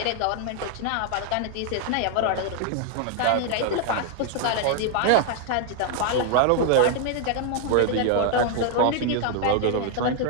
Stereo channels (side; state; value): both; different; correlation 0.00